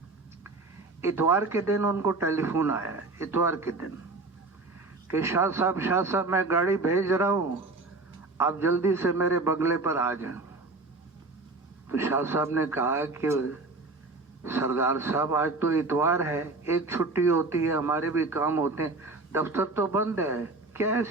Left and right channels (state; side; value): quieter; left; 3.4 dB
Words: اتوار کے دن ان کو ٹیلی فون آیا، اتوار کے دن، کہ شاہ صاحب میں گاڑی بھیج رہا ہوں، آپ جلدی سے میرے بنگلے پر آ جائیں. تو شاہ صاحب نے کہا کہ سردار صاحب آج تو اتوار ہے، ایک چھٹی ہوتی ہے، ہمارے بھی کام ہوتے ہیں، دفتر تو بند ہے، کیا